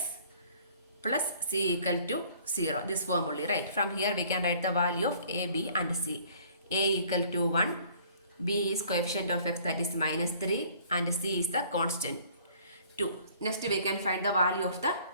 plus c equal to 0. This form only, right? From here we can write the value of a, b and c. A equal to 1, b is coefficient of x, that is minus 3, and c is the constant 2. Next we can find the value of the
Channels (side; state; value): both; inverted; correlation -0.55